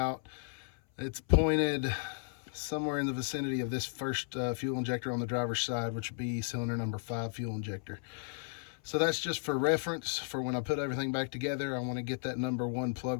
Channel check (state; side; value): silent; right; 55 dB below the other